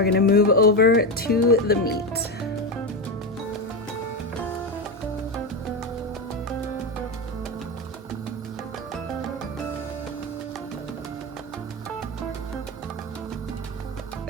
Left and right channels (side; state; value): both; normal; correlation 0.13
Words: gonna move over to the meat.